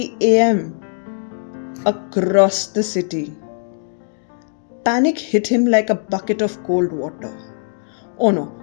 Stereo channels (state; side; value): silent; right; digital silence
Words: a.m. across the city. Panic hit him like a bucket of cold water. Oh no,